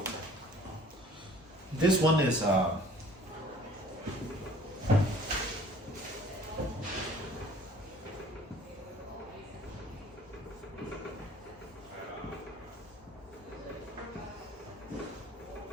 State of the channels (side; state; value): both; normal; correlation 0.51